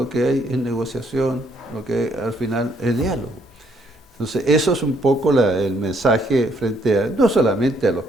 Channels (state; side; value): normal; both; correlation 0.69